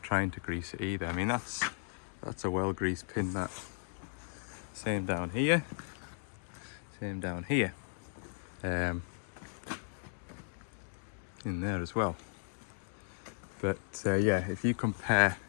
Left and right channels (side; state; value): right; silent; digital silence